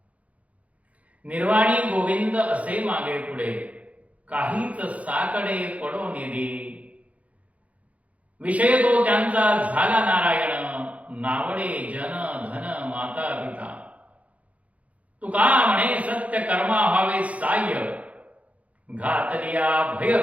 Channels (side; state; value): left; late; 0.067 ms